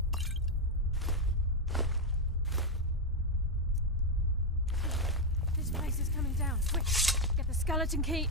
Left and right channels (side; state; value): both; normal; correlation 0.03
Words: This place is coming down. Quick! Get the skeleton key